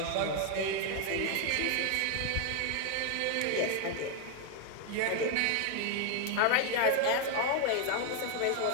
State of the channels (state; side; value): different; both; correlation 0.01